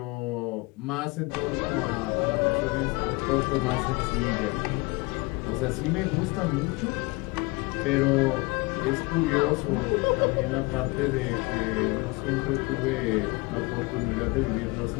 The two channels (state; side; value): quieter; right; 25.3 dB